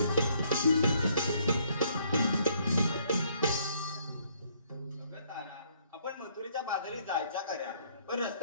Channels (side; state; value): both; inverted; correlation -0.67